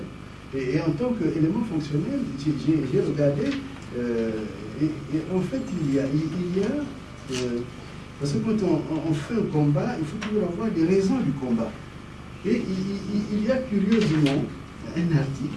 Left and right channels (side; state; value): both; identical; correlation 1.00